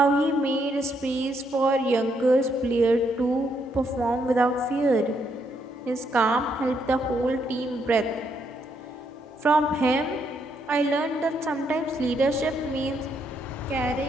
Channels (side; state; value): both; normal; correlation 0.75